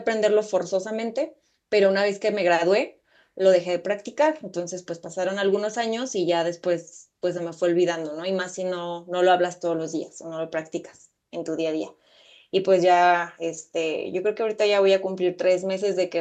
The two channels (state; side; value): identical; both; correlation 1.00